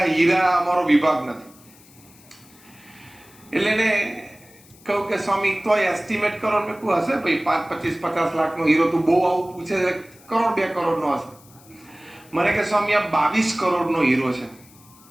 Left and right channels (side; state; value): left; noise; hiss, 26 dB below the sound